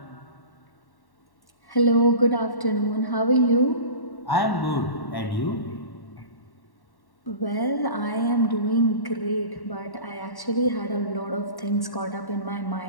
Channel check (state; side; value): late; right; 1.1 ms